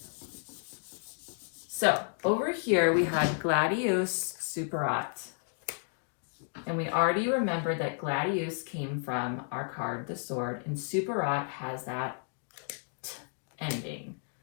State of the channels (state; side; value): silent; right; 56 dB below the other